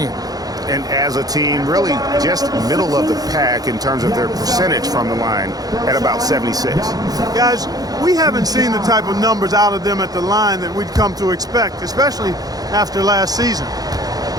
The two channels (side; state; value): left; late; 0.18 ms